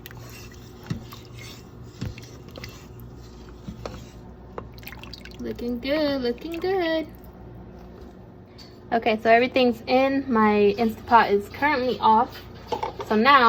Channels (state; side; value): identical; both; correlation 1.00